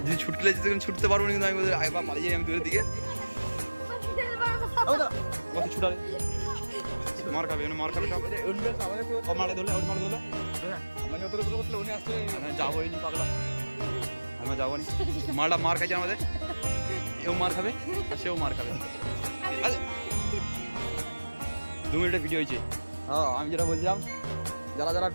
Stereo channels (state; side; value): inverted; both; correlation -1.00